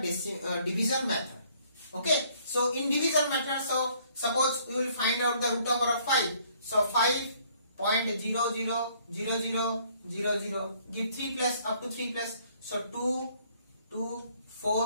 division method. Okay. So in division method, so suppose we will find out the root over of 5. So 5.000000, give 3 plus, up to 3 plus. So 2, 2,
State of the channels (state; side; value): inverted; both; correlation -0.62